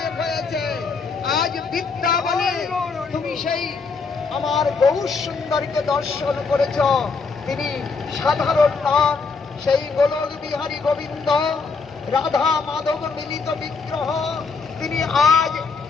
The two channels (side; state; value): right; quieter; 4.7 dB